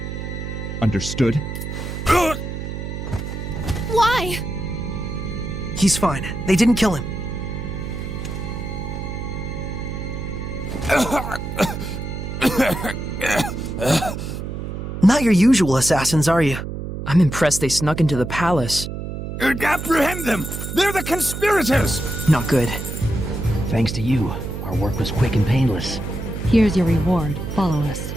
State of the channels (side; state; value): right; noise; hum, 6 dB below the sound